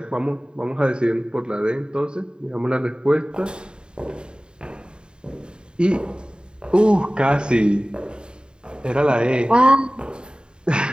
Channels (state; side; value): late; left; 0.049 ms